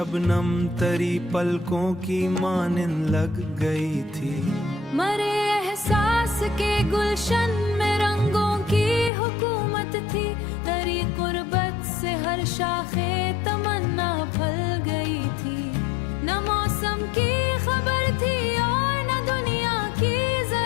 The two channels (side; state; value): right; drops out; at 9.1 s